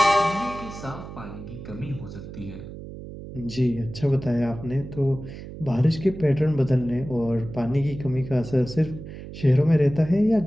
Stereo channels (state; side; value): noise; right; hum, 12 dB below the sound